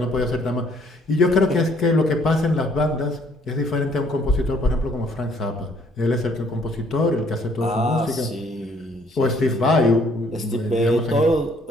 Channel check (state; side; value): normal; both; correlation 0.64